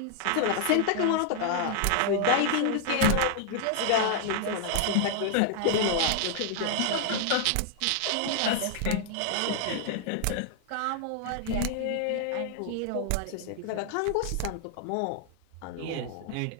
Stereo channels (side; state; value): both; different; correlation 0.00